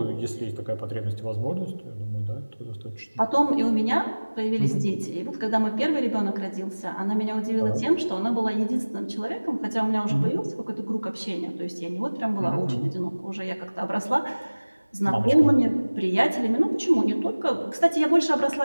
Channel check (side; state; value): both; inverted; correlation -1.00